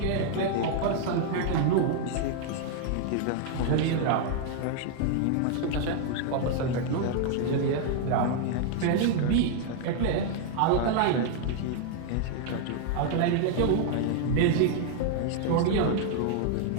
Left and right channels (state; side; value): different; both; correlation 0.00